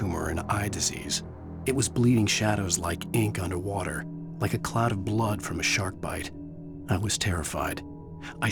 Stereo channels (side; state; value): both; identical; correlation 1.00